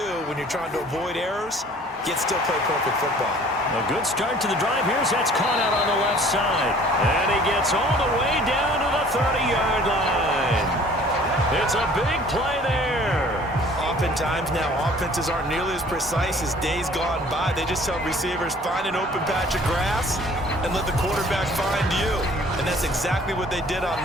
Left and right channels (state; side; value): normal; both; correlation 0.52